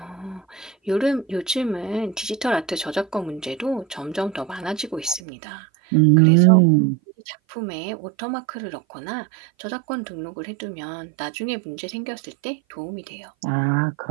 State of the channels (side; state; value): left; drops out; at 5.2 s